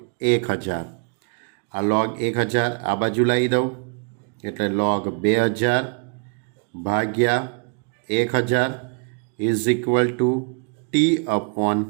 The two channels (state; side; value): quieter; left; 38.7 dB